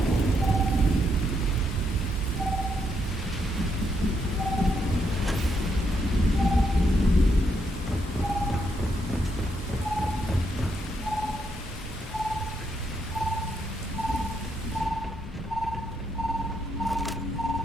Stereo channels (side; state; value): both; normal; correlation 0.77